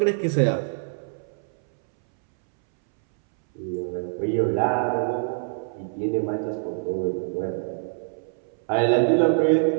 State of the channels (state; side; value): silent; left; 62 dB below the other